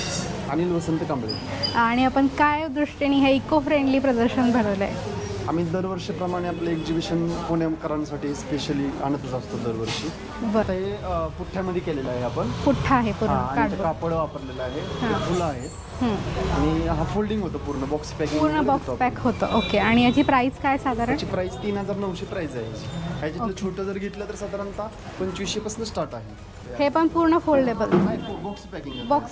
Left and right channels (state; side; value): identical; both; correlation 1.00